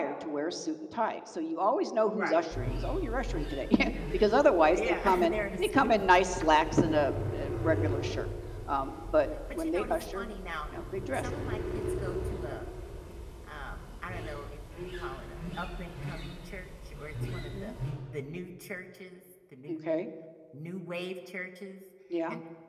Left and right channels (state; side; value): identical; both; correlation 1.00